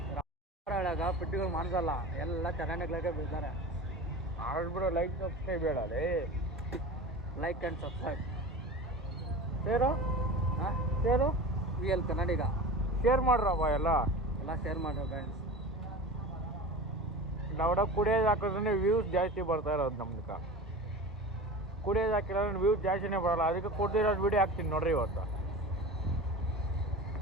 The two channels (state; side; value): normal; both; correlation 0.33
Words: ಹೇಳಾಗ ಪುಟ್ಟಿಗಳು ಮಾಡ್ಸಲ್ಲ, ಎಲ್ಲ ಚೆನ್ನಾಗಿ ಬೀಳ್ತಾರೆ. ಆಡ್ಬಿಡೋ, ಲೈಕ್ ಸಬ್ಸ್ಕ್ರೈಬ್ ಹೇಳಲಿ, like and subscribe. Share share ವಿ ಎಲ್ ಕನ್ನಡಿಗ ಶೇರ್ ಮಾಡ್ರಪ್ಪ, ಎಲ್ಲ ಶೇರ್ ಮಾಡ್ರಿ ಫ್ರೆಂಡ್ಸ್. ನಾವಡ ಕುಡಿಯೋದು ಹಾಕಿದ್ರೆ ವ್ಯೂಸ್ ಜಾಸ್ತಿ ಬರ್ತಾ ಇರೋದು ನಮ್ದಕ್ಕೆ. ಕುಡಿಯೋದು ಹಾಕಿಲ್ಲ ವ್ಯೂಸ್ ಜಾಸ್ತಿನೇ ಬರೋಲ್ಲ, ಅದಕ್ಕೆ ಕೊಡ್ದಿರೋದು ವಿಡಿಯೋ ಹಾಕ್ತೀನಿ ನೋಡ್ರಿ ಇವತ್ತು.